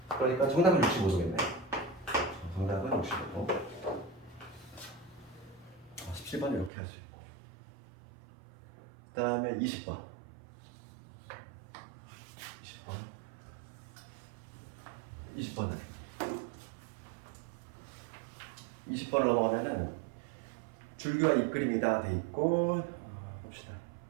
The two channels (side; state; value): left; drops out; at 6.7 s